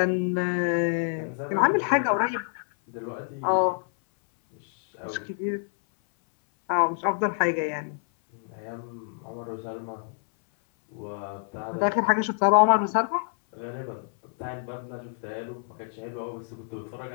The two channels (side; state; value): right; silent; 58 dB below the other